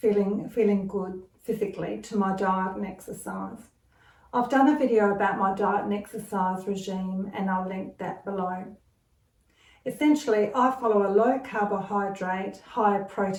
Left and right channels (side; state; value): both; identical; correlation 1.00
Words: good physically to my diet and exercise. I've done a video about my diet and exercise regime and I'll link that below. Essentially, I follow a low carbohydrate, high